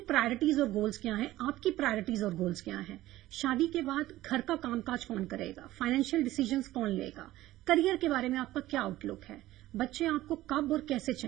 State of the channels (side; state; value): left; quieter; 15.9 dB